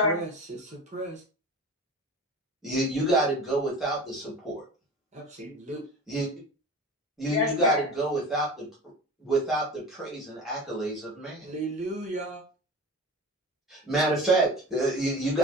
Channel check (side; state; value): both; normal; correlation 0.34